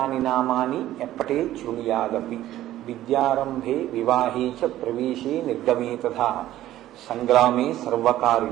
నామాని ఎప్పటే శృణుయాదపి విద్యారంభే వివాహే చ ప్రవేశే నిర్గమే తథా సంగ్రామే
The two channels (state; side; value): quieter; left; 13.9 dB